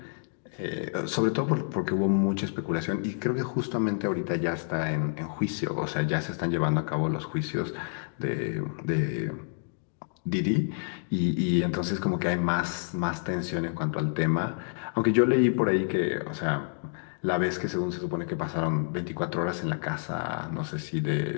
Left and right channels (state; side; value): silent; right; digital silence